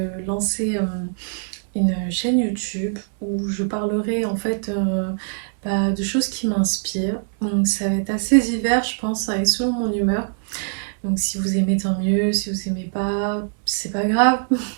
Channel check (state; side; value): silent; left; 64 dB below the other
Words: lancer une chaîne YouTube où je parlerai en fait de choses qui m'inspirent. Donc ça va être assez divers je pense, et selon mon humeur. Donc si vous aimez tant mieux, si vous aimez pas, c'est pas grave.